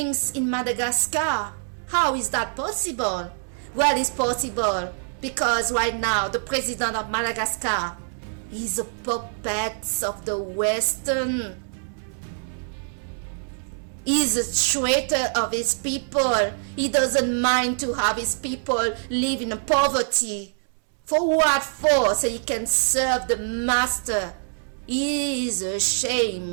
in Madagascar, how is that possible? Well, it's possible because right now the president of Madagascar is a puppet of the Western. He's a traitor of his people. He doesn't mind to have his people live in poverty. For what for? So he can serve the master. He is a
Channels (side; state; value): left; silent; 62 dB below the other